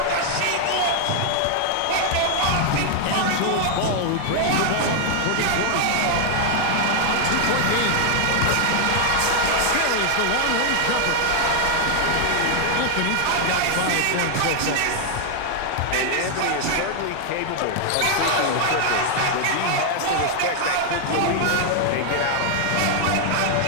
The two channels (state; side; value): different; both; correlation 0.00